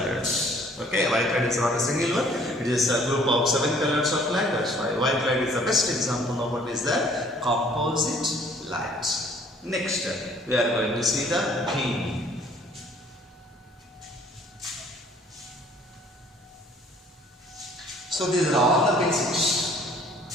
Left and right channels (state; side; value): normal; both; correlation 0.57